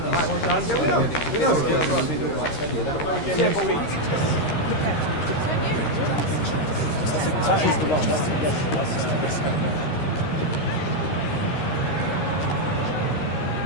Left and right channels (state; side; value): late; right; 13 ms